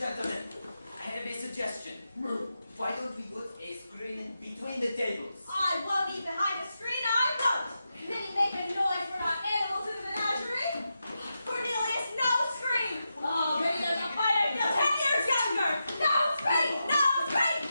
I have a suggestion. Why don't we put a screen between the tables? I won't eat behind a screen, I won't! Didn't make a noise, we're not animals in the menagerie! Cornelius, no screen! Oh, maybe there's a fight, I feel 10 years younger! No screen! No screen!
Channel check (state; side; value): inverted; both; correlation -0.88